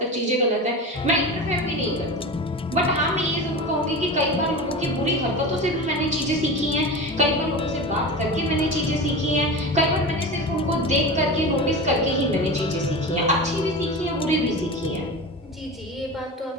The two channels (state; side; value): normal; both; correlation 0.28